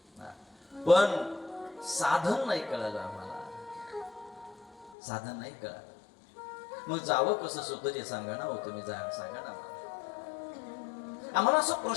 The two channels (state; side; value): drops out; right; at 5.0 s